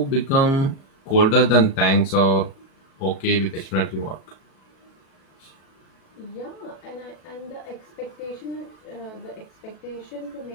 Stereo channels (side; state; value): right; late; 37 ms